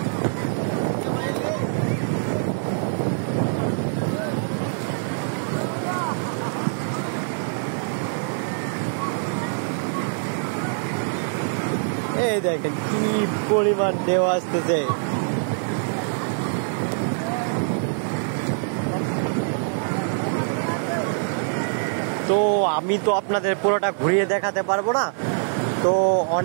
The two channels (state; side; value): silent; left; digital silence